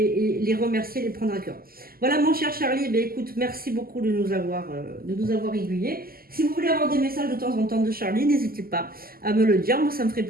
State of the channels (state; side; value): late; left; 0.43 ms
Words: remercier, les prendre à cœur. Voilà mon cher Charlie, écoute, merci beaucoup de nous avoir aiguillés. Si vous voulez avoir des messages de temps en temps de Charlie, n'hésitez pas à me le dire. Moi, ça me ferait